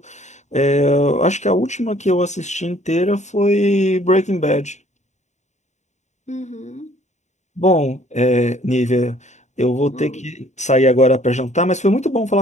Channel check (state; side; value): late; right; 0.34 ms